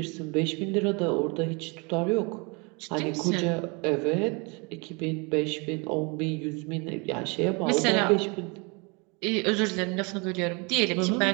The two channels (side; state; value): left; quieter; 30.4 dB